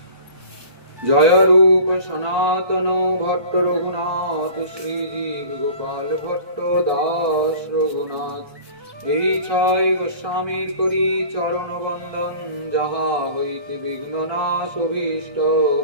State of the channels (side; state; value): left; late; 1.2 ms